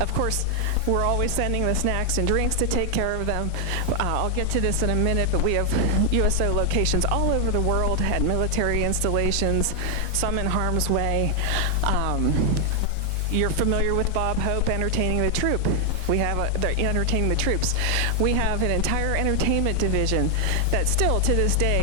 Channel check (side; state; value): both; different; correlation 0.00